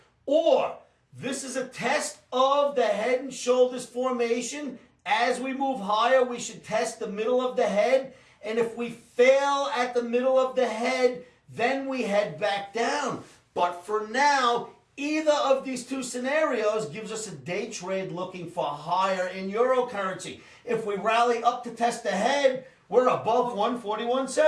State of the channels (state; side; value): identical; both; correlation 1.00